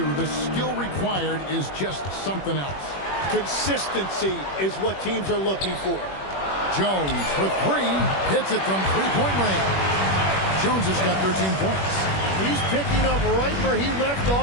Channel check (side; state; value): right; late; 21 ms